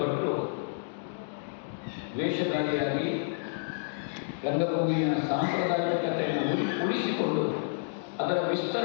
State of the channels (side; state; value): right; silent; digital silence